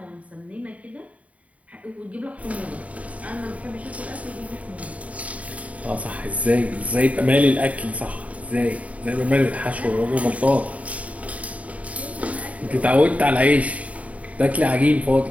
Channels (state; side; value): late; left; 0.068 ms